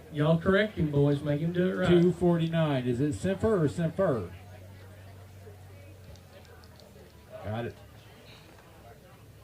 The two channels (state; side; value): identical; both; correlation 1.00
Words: Y'all correct him, boys. Make him do it right. $2.49. Is it Simper or Simfer? Got it.